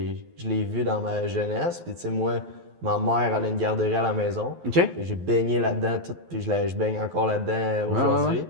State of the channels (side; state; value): left; late; 12 ms